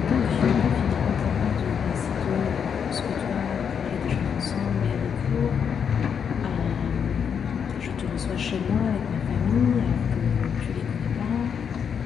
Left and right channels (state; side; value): quieter; right; 7.3 dB